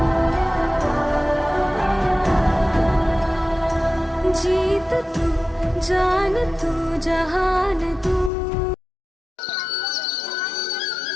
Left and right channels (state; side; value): drops out; right; at 8.3 s